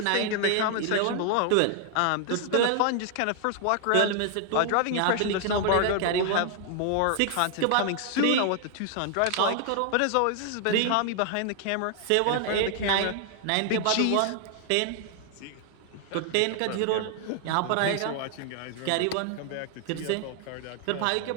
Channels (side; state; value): both; different; correlation 0.00